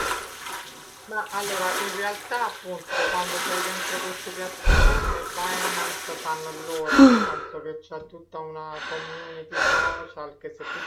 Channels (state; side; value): identical; both; correlation 1.00